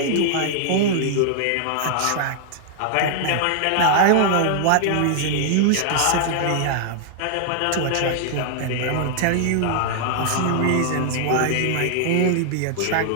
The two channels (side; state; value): both; different; correlation -0.01